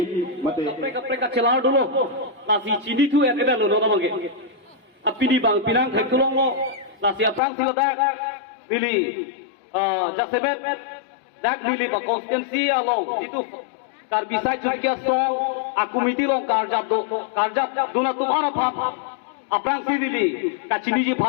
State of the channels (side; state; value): right; drops out; at 7.4 s